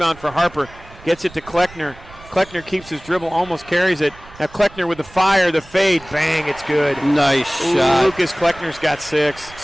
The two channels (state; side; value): noise; right; rumble, 21 dB below the sound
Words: for Harper. Gets it to Kleckner. Kleckner keeps his dribble, almost carries it. Now Kleckner with the fire, the fade, bang, it's good. Nice shot. Lucas Kleckner's got 6.